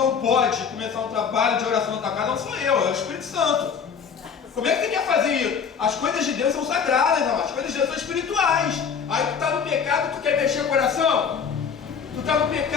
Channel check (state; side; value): quieter; right; 6.7 dB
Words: pode começar um trabalho de oração na tua casa não sou eu, é o Espírito Santo. Como é que você quer fazer isso? As coisas de Deus são sagradas, não? As coisas de Deus são espirituais. Aí tu está no pecado, tu quer mexer o coração? Tu está no